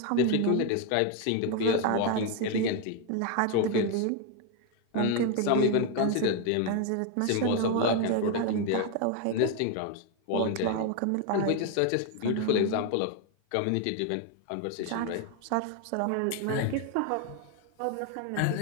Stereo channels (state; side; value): different; both; correlation 0.01